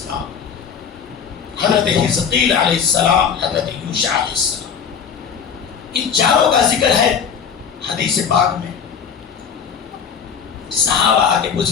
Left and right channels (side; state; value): right; quieter; 7.1 dB